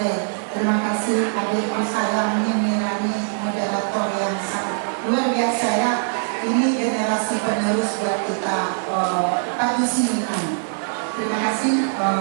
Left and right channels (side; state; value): left; silent; 57 dB below the other